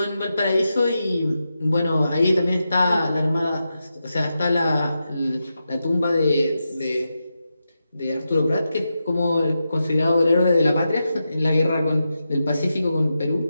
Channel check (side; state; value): both; inverted; correlation -0.89